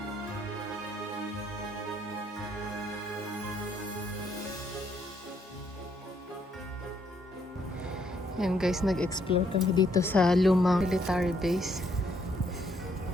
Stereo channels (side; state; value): both; normal; correlation 0.71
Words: Ayan guys, nag-explore kami dito sa lumang military base.